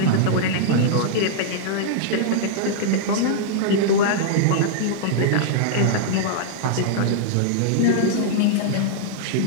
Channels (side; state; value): both; different; correlation -0.02